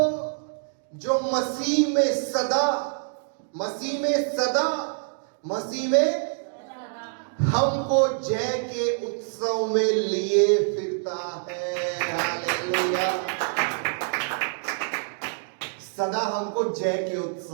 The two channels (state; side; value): silent; left; 60 dB below the other